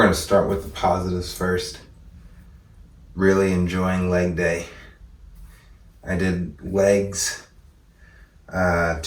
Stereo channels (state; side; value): identical; both; correlation 1.00